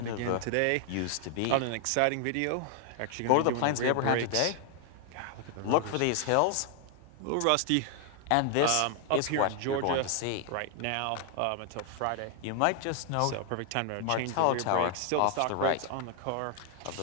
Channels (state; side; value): different; both; correlation 0.00